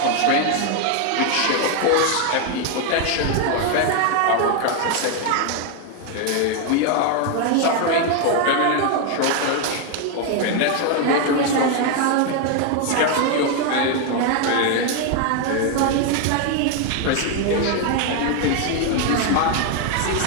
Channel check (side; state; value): both; different; correlation 0.01